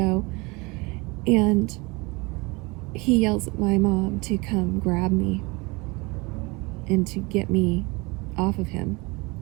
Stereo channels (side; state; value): left; quieter; 26.1 dB